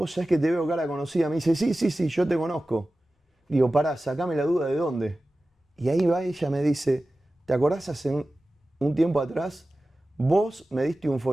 sabés que te veo cara conocida. Me dice, sí, yo te conozco. Digo, pará, sacame la duda de dónde. Y ahí va ella, me dice, ¿te acordás hace un tiempo atrás? Vos me diste un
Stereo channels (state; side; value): normal; both; correlation 0.95